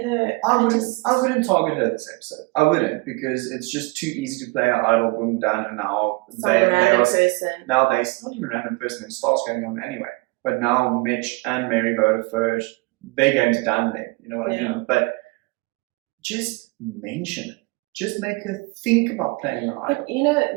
her. I wouldn't target her this episode. I wouldn't, because it's just too easy to play an idol, boom, done, and now now it's not even a random person. It starts going on anyway. But now Mitch and Mary voted first. Their game's done then. You know what I mean? But just mention it. Just make her think about playing an idol. But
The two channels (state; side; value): quieter; left; 26.1 dB